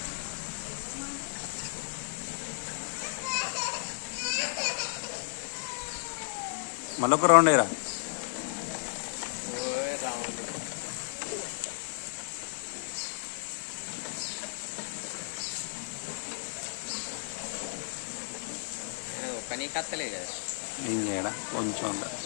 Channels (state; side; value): silent; right; digital silence